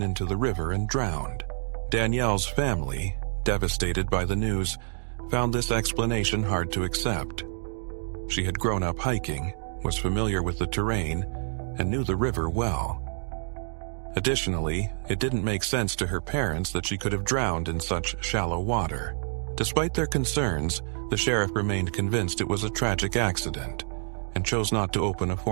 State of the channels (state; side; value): silent; left; digital silence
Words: into the river and drowned. Danielle's family, devastated by the news, found this explanation hard to accept. She had grown up hiking, was familiar with the terrain, and knew the river well. Additionally, it didn't make sense to her parents that she could have drowned in such shallow water. Despite their concerns, the sheriff remained convinced it was a tragic accident and chose not to open a